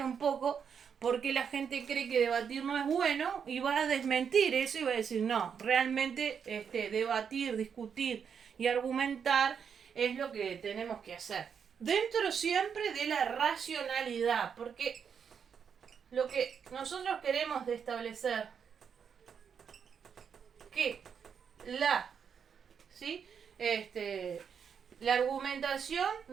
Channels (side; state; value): left; quieter; 7.1 dB